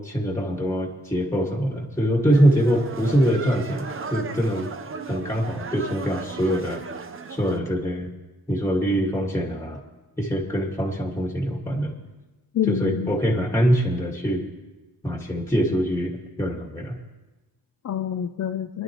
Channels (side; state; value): both; normal; correlation 0.73